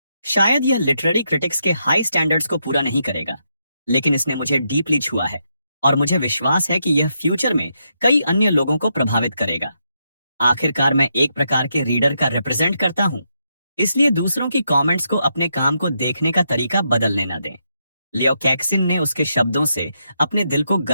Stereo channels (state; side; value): inverted; both; correlation -0.81